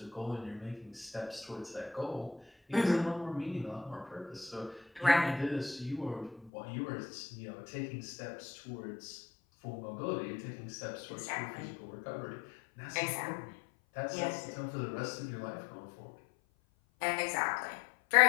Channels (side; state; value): right; drops out; at 6.5 s